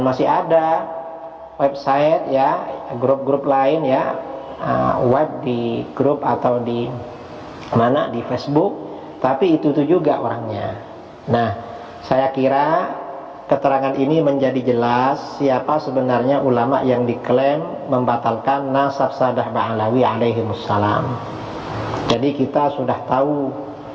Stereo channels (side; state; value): both; identical; correlation 1.00